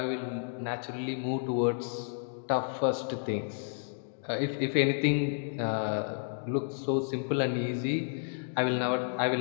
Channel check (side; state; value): right; silent; digital silence